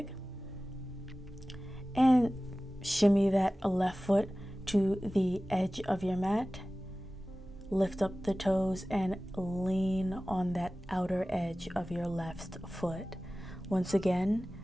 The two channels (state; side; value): normal; both; correlation 0.97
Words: and shimmy that left foot to the edge of your mat. Lift up the toes and lean on that outer edge of your left foot. Once again,